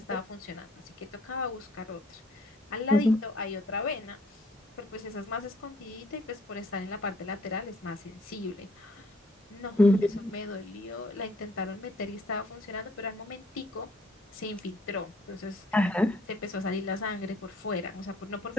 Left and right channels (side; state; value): both; normal; correlation 0.62